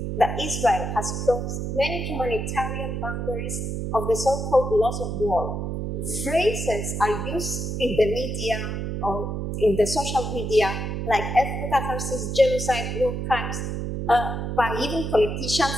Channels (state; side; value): noise; right; hum, 3 dB below the sound